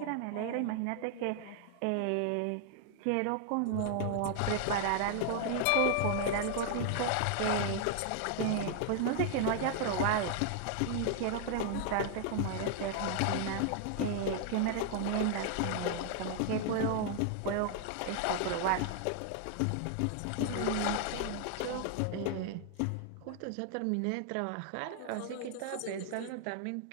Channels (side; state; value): both; different; correlation 0.00